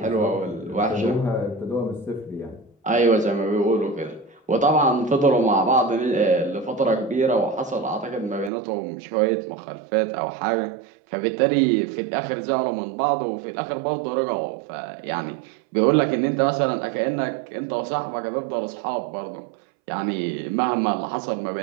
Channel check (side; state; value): left; drops out; at 8.5 s